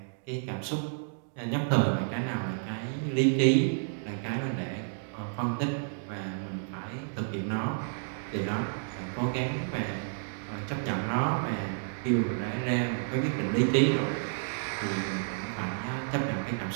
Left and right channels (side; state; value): left; silent; digital silence